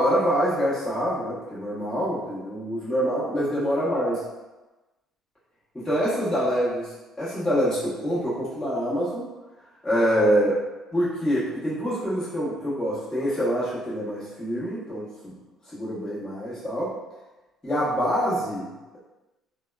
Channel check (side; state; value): both; normal; correlation 0.71